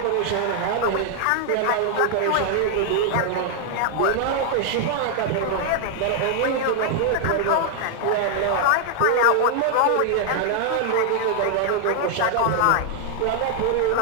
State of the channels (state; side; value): different; both; correlation 0.00